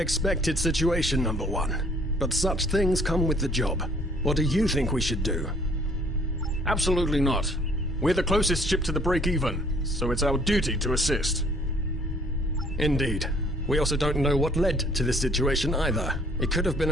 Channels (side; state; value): both; normal; correlation 0.59